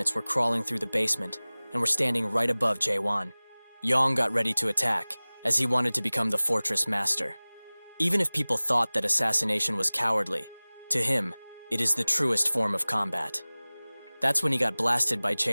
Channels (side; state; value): both; inverted; correlation -1.00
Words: were crawling through the basement and were standing right above Jae-hwan. Yong got ready to attack, as he wanted to become the Fortress Master. Even if people thought that assassination was cowardly, to him, it is the truest form of combat. That's when he got blasted by